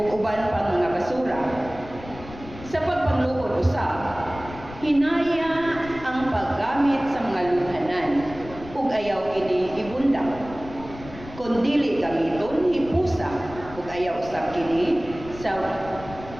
uban pang mga basura. Sa pagpanglukod usab, hinaya ang paggamit sa mga lunghanan ug ayaw kini ibunda. Kung dili gamiton, hipusa ug ayaw usab kini sa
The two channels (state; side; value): noise; left; rumble, 15 dB below the sound